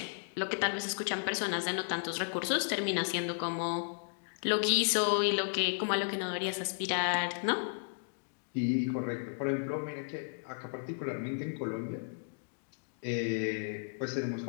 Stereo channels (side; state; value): right; silent; digital silence